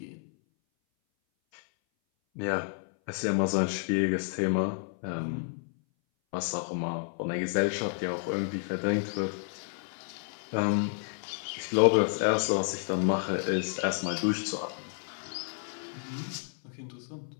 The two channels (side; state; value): right; silent; 57 dB below the other